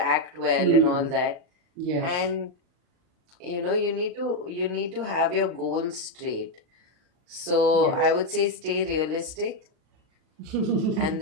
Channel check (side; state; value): left; late; 39 ms